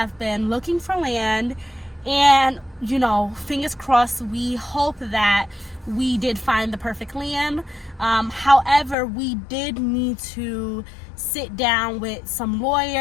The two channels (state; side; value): drops out; right; at 9.0 s